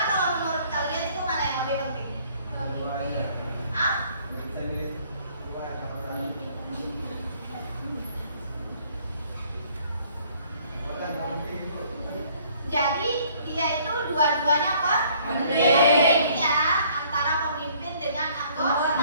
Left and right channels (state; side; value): inverted; both; correlation -0.60